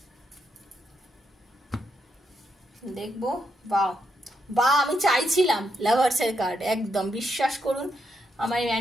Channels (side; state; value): both; normal; correlation 0.80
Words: দেখবো, বা আমি চাইছিলাম লাভার্সের কার্ড, একদম বিশ্বাস করুন আমার